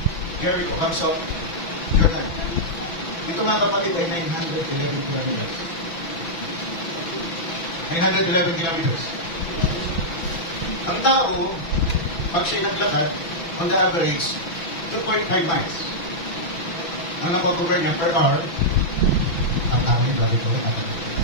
Jericho, Hamsok, Jordan. Ito mga kapatid ay 911 kilometers. 911 kilometers. Ang tao, pag siya naglakad, on the average, 2.5 miles. Ang nakocover niya per hour, ang tao yung babi ko,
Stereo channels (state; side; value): late; right; 6.0 ms